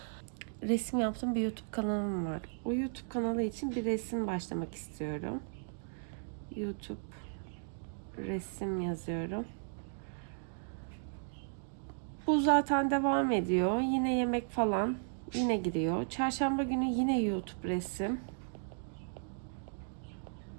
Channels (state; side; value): silent; left; digital silence